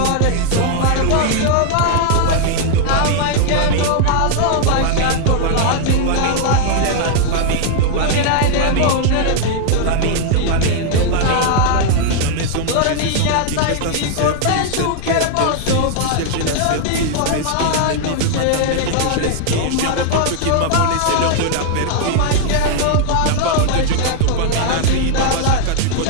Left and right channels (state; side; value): different; both; correlation 0.00